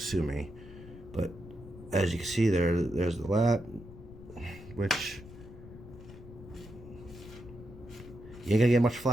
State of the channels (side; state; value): left; noise; rumble, 16 dB below the sound